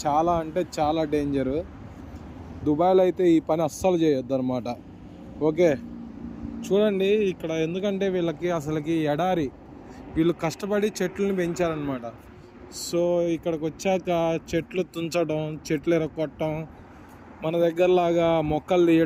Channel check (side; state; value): both; identical; correlation 1.00